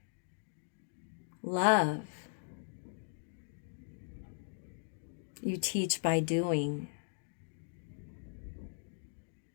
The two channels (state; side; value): silent; right; digital silence